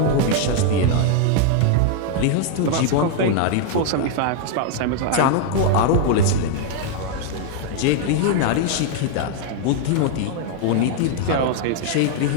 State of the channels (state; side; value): different; both; correlation 0.00